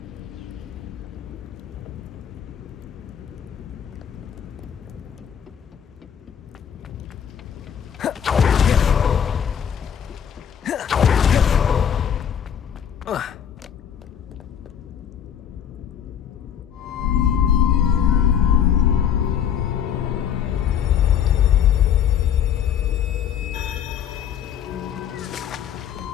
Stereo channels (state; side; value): quieter; right; 8.8 dB